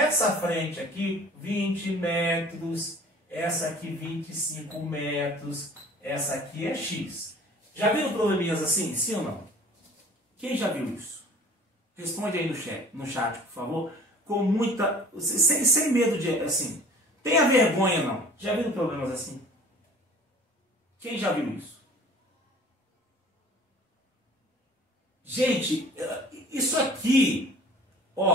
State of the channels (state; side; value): normal; both; correlation 0.48